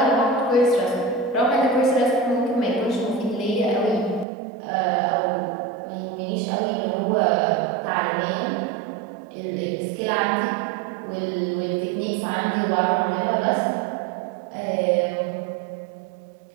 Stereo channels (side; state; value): left; drops out; at 4.2 s